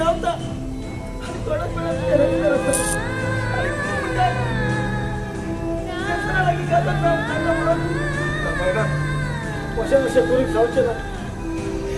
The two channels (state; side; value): identical; both; correlation 1.00